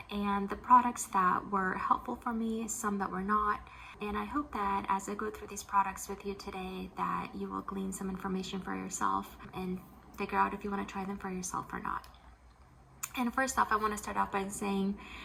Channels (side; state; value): both; identical; correlation 1.00